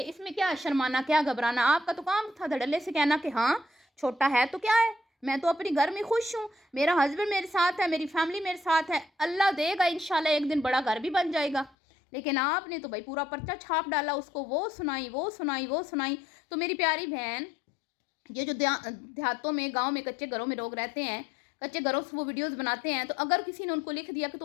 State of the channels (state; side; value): drops out; right; at 11.7 s